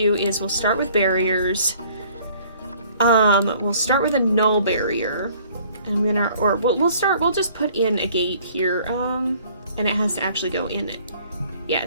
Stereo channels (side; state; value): both; inverted; correlation -0.56